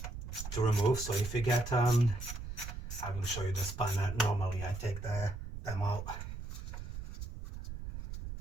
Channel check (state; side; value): noise; right; rumble, 8 dB below the sound